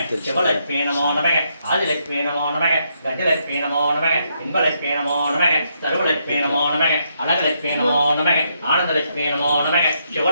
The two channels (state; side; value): inverted; both; correlation -0.77